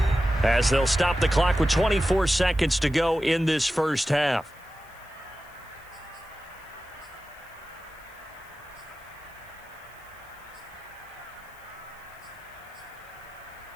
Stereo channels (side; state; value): left; noise; hiss, 27 dB below the sound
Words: as they'll stop the clock with 24 seconds to go in this first half.